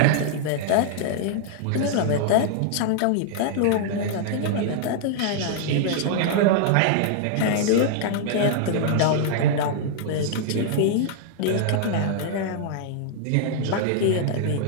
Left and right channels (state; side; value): different; both; correlation -0.01